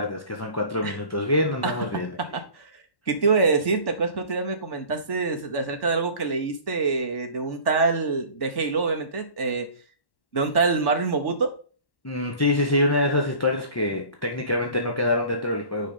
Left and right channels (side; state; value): right; late; 1.1 ms